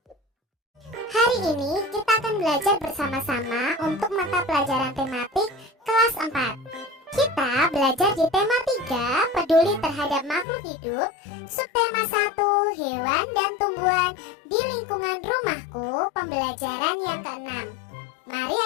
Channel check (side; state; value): right; drops out; at 10.5 s